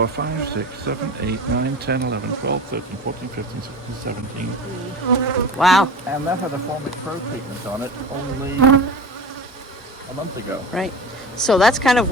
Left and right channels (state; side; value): normal; both; correlation 0.33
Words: 5, 6, 7, 8, 9, 10, 11, 12, 13, 14, 15, 16, 17. Wow. And that had a Formic Pro treatment on it only a month ago. Right. So that's kind of